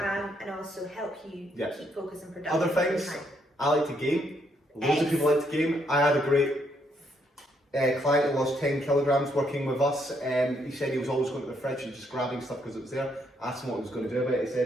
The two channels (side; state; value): both; normal; correlation 0.74